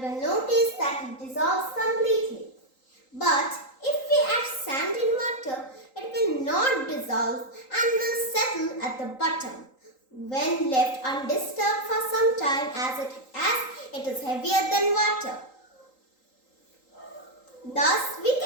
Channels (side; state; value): right; late; 3.8 ms